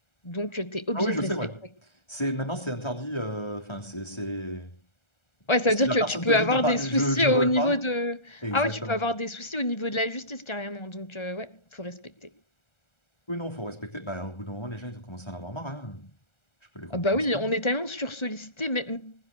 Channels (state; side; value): late; right; 1.4 ms